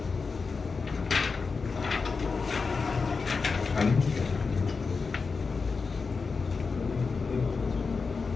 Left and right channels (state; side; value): quieter; right; 4.7 dB